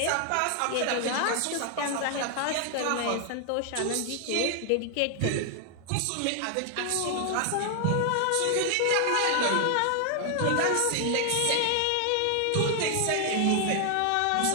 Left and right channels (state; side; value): different; both; correlation 0.00